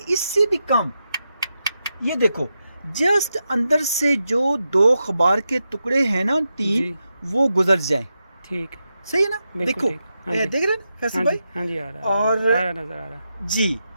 इससे भी कम। ये देखो जस्ट अंदर से जो 2 अखबार के टुकड़े हैं ना, 3, वो गुजर जाएं। ठीक, सही है ना। देखो देख रहे हैं फैसल भाई। हाँ जी, आ रहा है, और नजर आ रहा जी।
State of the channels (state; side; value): inverted; both; correlation -0.87